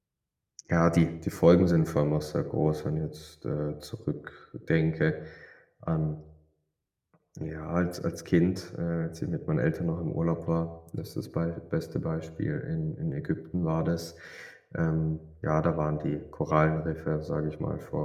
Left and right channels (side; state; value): both; identical; correlation 1.00